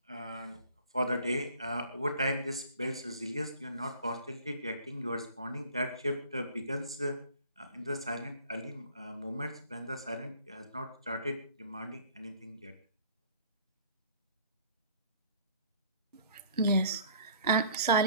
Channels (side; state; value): both; inverted; correlation -0.51